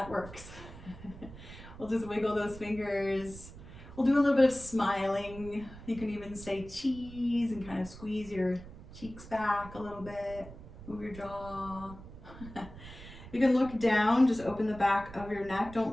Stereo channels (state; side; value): noise; right; rumble, 15 dB below the sound